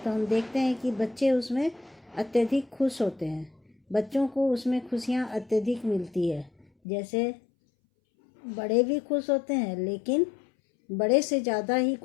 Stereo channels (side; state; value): right; drops out; at 6.7 s